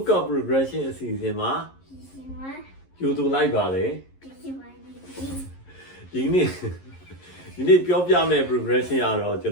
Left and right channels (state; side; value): late; right; 11 ms